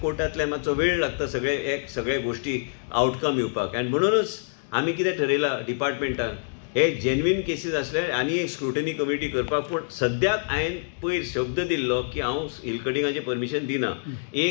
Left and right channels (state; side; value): silent; right; digital silence